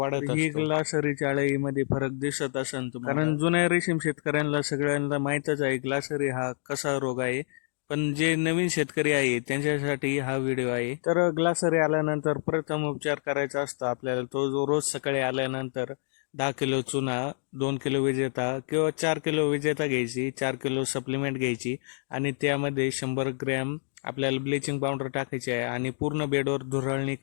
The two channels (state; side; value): silent; right; digital silence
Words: असतो. ही ग्लासरीच्या आळीमध्ये फरक दिसत असेल तुम्हाला, कारण जुन्या रेशीम शेतकऱ्यांना सगळ्यांना माहितच आहे ग्लासरी हा कसा रोग आहे. पण जे नवीन शेतकरी आहे त्यांच्यासाठी हा व्हिडिओ आहे. तर ग्लासरी आल्यानंतर प्रथम उपचार करायचा असतो आपल्याला. तो जो रोज सकाळी आल्यानंतर 10 किलो चुना, 2 किलो विजेता किंवा 4 किलो विजेता घ्यायची, 4 किलो सप्लिमेंट घ्यायची आणि त्यामध्ये 100 ग्रॅम आपल्याला ब्लिचिंग पावडर टाकायची आहे आणि पूर्ण बेडवर धुराळणी